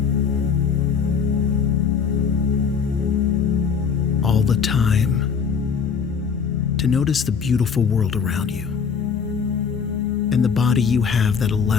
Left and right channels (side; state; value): right; quieter; 6.3 dB